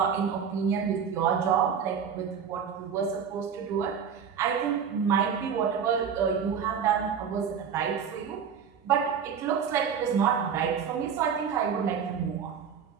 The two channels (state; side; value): quieter; left; 7.2 dB